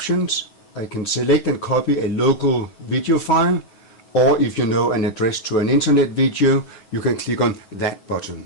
I can select and copy a local video file, or if you know an address to an internet video, you can click on that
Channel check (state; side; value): late; right; 9.2 ms